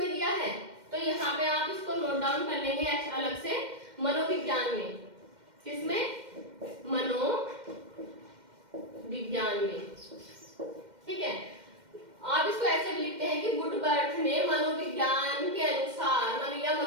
दिया है, तो यहाँ पे आप इसको नोट डाउन कर लेंगे अलग से, मनोविज्ञान में। किसमें, मनोविज्ञान में। ठीक है, आप इसको ऐसे भी लिखते हैं कि वुडवर्थ ने मनोविज्ञान के अनुसार या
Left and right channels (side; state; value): left; late; 2.1 ms